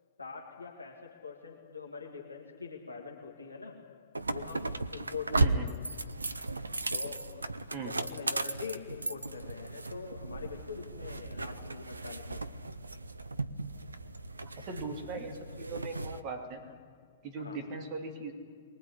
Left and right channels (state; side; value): inverted; both; correlation -0.76